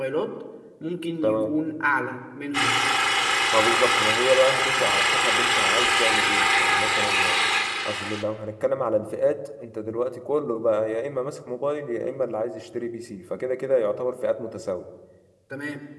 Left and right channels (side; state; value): both; identical; correlation 1.00